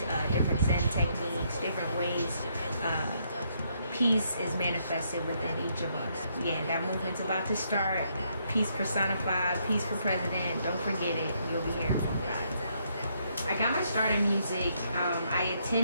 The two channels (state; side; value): inverted; both; correlation -0.73